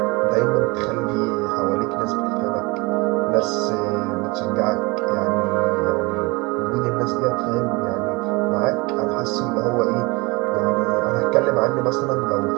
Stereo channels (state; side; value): quieter; left; 25.7 dB